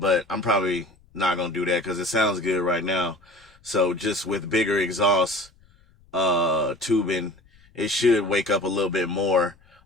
I'm probably not gonna do that because it sounds good right now. So just with bigger exhaust tubing, it should wake up a little bit more.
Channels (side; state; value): left; noise; rumble, 30 dB below the sound